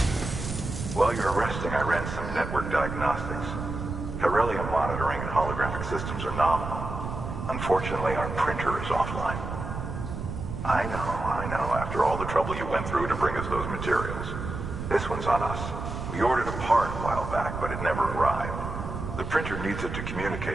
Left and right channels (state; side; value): noise; right; rumble, 6 dB below the sound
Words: While you're resting, I ran some network diagnostics. Beryllium monitoring and holographic systems are nominal. Unfortunately, our printer is offline. I know, after all the trouble you went through to bring us those materials. This one's on us. We ordered a part a while back, but it never arrived. The printer needs it to